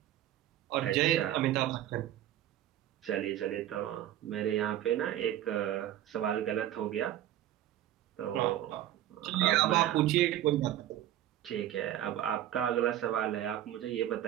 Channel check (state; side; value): quieter; left; 12.5 dB